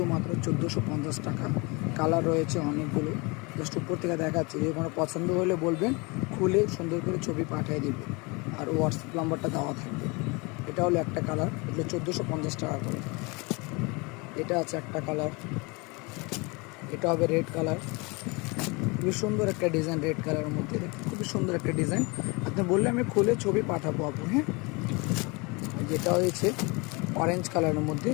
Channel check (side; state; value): right; quieter; 27.7 dB